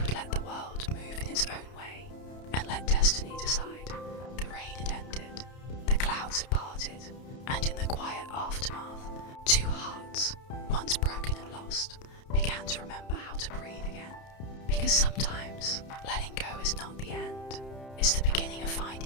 let the world move in its own way, and let destiny decide. The rain had ended, the clouds had parted, and in the quiet aftermath, two hearts, once broken and lost, began to remember how to breathe again. Because sometimes letting go is not the end, it's the beginning of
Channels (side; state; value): right; late; 31 ms